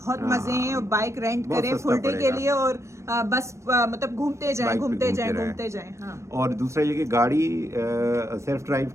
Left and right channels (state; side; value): late; left; 0.14 ms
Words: हाँ, मजे हैं। और बाइक रेंट बहुत करें सस्ता फुल डे के पड़ेगा। लिए और बस मतलब घूमते जाएं, बाइक पे घूमते जाएं, रहें। घूमते जाएं। हाँ, और दूसरा ये कि गाड़ी सेल्फ ड्राइव